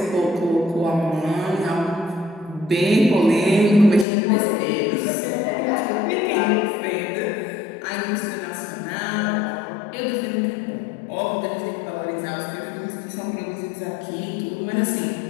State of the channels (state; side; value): drops out; right; at 4.0 s